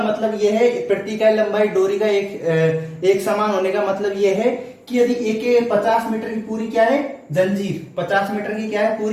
यह है, प्रति इकाई लंबाई डोरी का एक समान होने का मतलब यह है कि यदि एक 50 मीटर की पूरी क्या है, जंजीर, 50 मीटर की क्या है,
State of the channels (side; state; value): both; identical; correlation 1.00